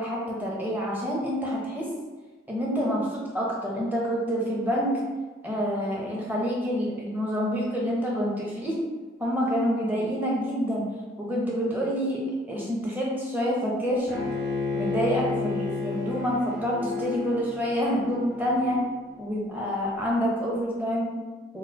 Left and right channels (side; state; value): both; normal; correlation 0.58